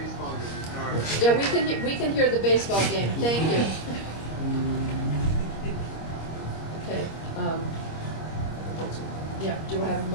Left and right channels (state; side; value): late; right; 25 ms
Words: game. Yeah, we can hear the baseball game. Thank you. Okay. That's it. Yeah. Do I have a